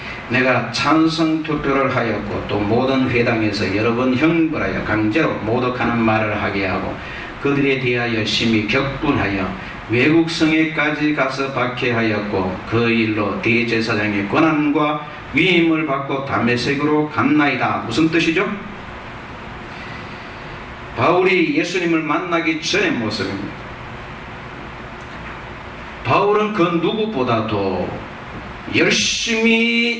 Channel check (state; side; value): identical; both; correlation 1.00